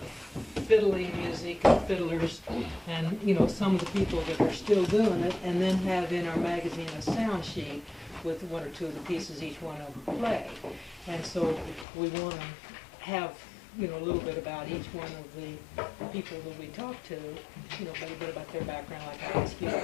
fiddling music and fiddlers and, some of the people that are still doing it, and then have in our magazine a sound sheet with 1 or 2 of the pieces each one of them play. And so we want to have, a little bit about each one of the people that we talk to, a little bit about their background, like I asked you,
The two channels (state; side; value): drops out; right; at 11.9 s